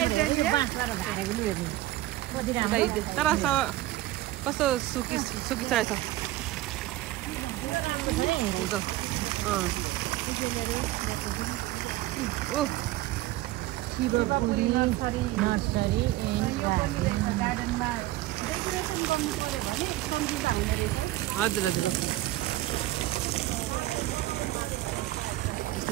यो बाँसबाट झारेको लियो तर कस्तो सुकी रहेछ। शिवपुरी नर्सरी एन्ड गार्डनमा डेकोरेसन गर्नु पर्यो भने कम्ती दाममा हजुर हजुर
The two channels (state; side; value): quieter; left; 16.3 dB